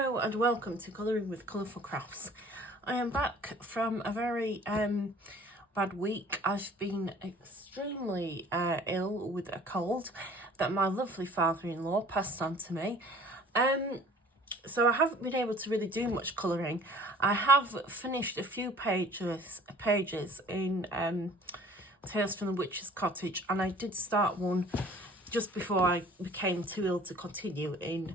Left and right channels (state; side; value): normal; both; correlation 0.50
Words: and welcome to Colouring with Colourful Crafts. I am back from a very bad week. I've been extremely ill with a cold that my lovely father-in-law passed on to me. So I haven't been able to really do much colouring. I have finished a few pages in Tales from the Witch's Cottage, and I did start one just before I became too ill to continue in